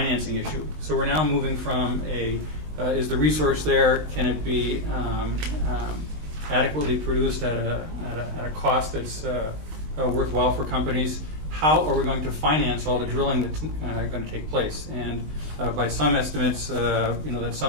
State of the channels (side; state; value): left; late; 19 ms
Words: issue. So we're now moving from is the resource there? Can it be adequately produced at a cost that's worthwhile for companies? How are we going to finance all the drilling that's going to take place? And by some estimates, that's